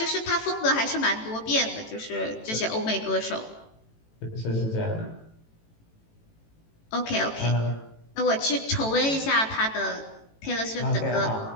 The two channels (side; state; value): right; late; 18 ms